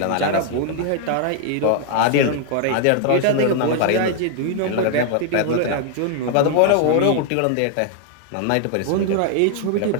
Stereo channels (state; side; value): different; both; correlation 0.00